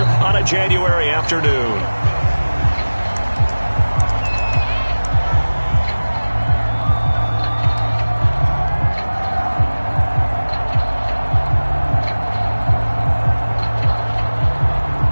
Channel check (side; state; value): both; inverted; correlation -1.00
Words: on a January afternoon.